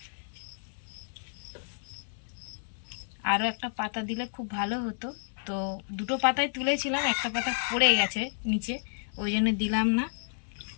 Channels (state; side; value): silent; right; 57 dB below the other